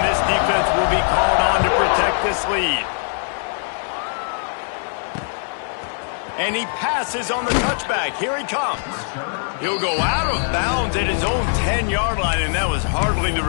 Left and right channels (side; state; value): right; silent; digital silence